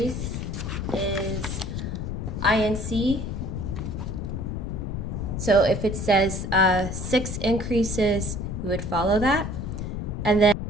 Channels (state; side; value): noise; left; rumble, 4 dB below the sound